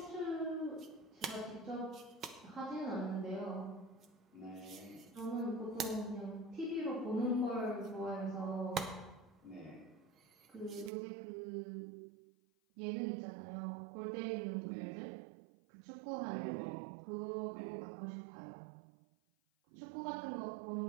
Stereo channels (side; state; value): left; drops out; at 10.9 s